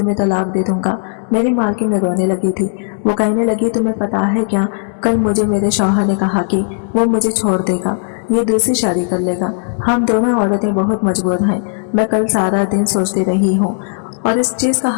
तलाक दे दूंगा। मेरी मालकिन रोने लगी थी। वो कहने लगी तुम्हें पता है क्या, कल मुझे मेरे शौहर ने कहा कि वो मुझे छोड़ देगा, ये दूसरी शादी कर लेगा। हम दोनों औरतें बहुत मजबूर हैं। मैं कल सारा दिन सोचती रही हूँ और इस चीज़ का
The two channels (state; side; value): silent; right; digital silence